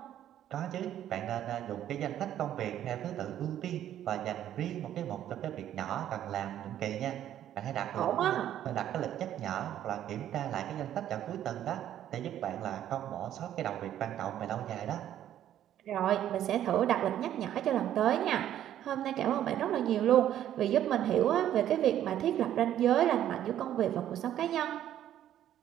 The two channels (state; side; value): quieter; left; 11.4 dB